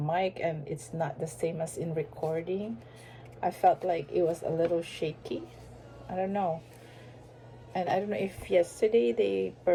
and it's not the same as in recording. I felt like it was a little shaky. I don't know. And I don't know if yesterday they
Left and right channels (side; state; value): both; identical; correlation 1.00